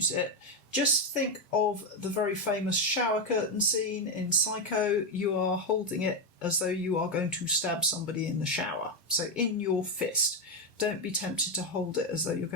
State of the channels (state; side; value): normal; both; correlation 0.07